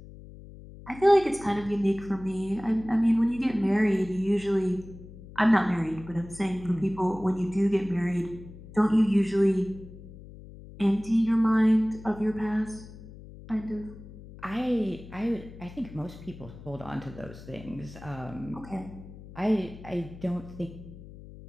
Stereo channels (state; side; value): noise; left; hum, 17 dB below the sound